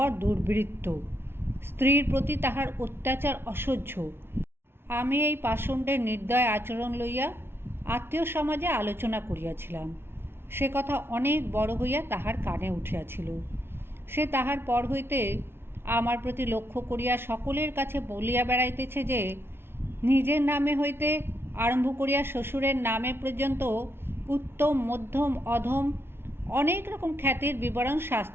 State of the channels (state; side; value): late; left; 0.11 ms